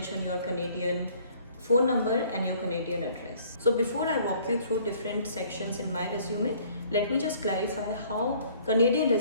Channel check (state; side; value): inverted; both; correlation -0.57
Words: your Canadian phone number and your Canadian address. So before I walk you through different sections in my resume, let me just clarify how Canadian